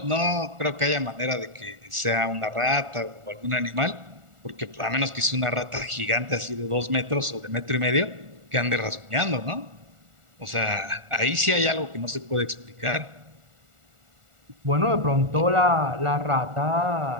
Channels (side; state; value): left; late; 1.4 ms